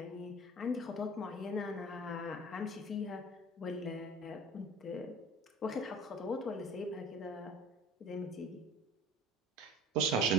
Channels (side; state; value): both; normal; correlation 0.43